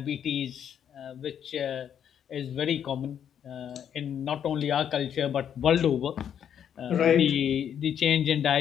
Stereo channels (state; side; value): quieter; right; 8.9 dB